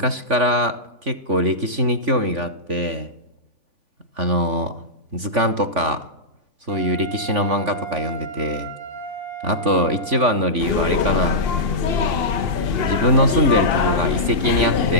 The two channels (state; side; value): late; left; 3.5 ms